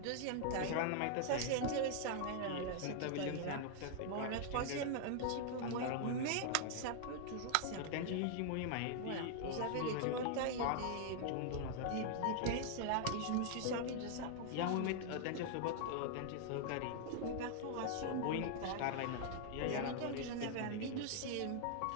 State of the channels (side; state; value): both; different; correlation -0.01